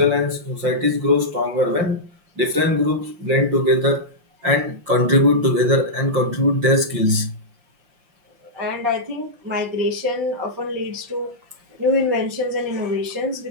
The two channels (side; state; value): left; late; 5.7 ms